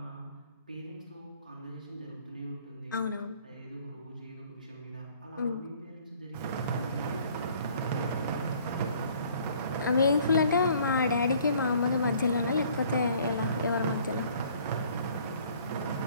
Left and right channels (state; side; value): inverted; both; correlation -0.57